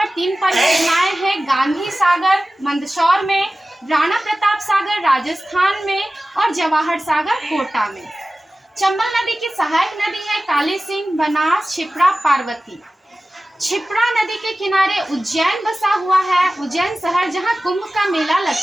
3 परियोजनाएं हैं: गांधी सागर मंदसौर में, राणा प्रताप सागर राजस्थान में और जवाहर सागर कोटा में। चंबल नदी की सहायक नदी है काली सिंह, बनास, छिप्रा, पार्वती। छिप्रा नदी के किनारे उज्जैन बसा हुआ है, उज्जैन शहर, जहां कुंभ का मेला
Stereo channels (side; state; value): both; normal; correlation 0.96